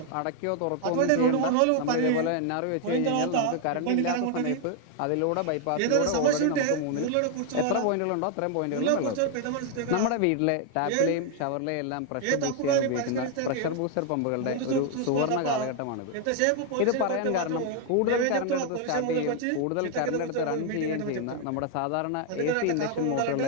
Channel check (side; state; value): both; different; correlation 0.00